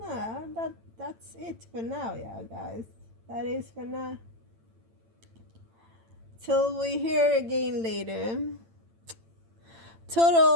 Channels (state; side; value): late; left; 8.9 ms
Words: that's it for now, yeah, guys. That is for now. Till we hear again later.